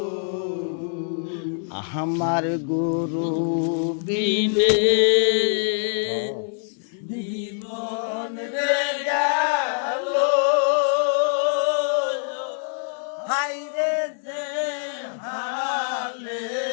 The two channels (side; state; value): right; silent; digital silence